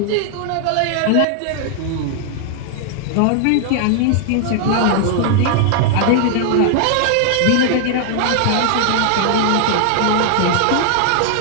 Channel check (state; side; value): different; both; correlation 0.00